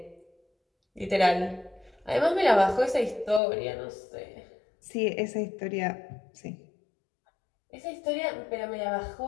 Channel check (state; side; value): drops out; right; at 3.4 s